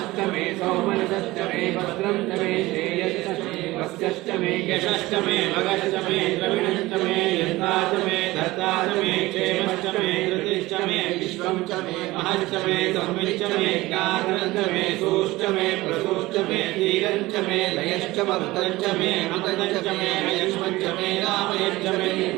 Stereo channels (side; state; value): left; quieter; 19.2 dB